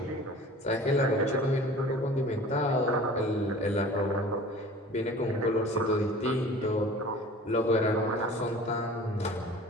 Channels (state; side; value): normal; both; correlation 0.43